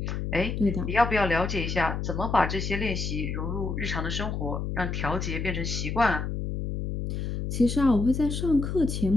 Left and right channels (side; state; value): left; noise; hum, 3 dB below the sound